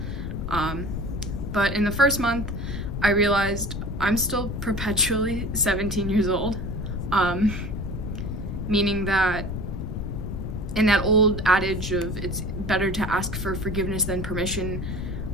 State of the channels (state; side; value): noise; left; rumble, 4 dB below the sound